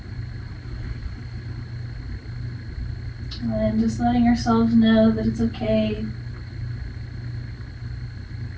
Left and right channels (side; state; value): both; identical; correlation 1.00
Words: And just letting ourselves know that it's okay